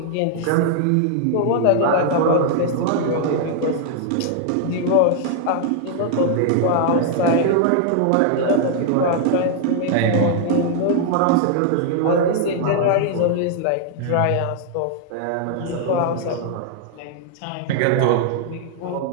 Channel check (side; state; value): both; different; correlation 0.00